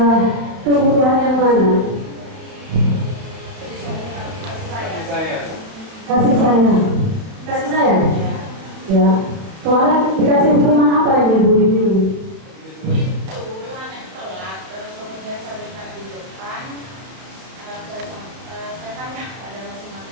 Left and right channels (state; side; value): late; left; 32 ms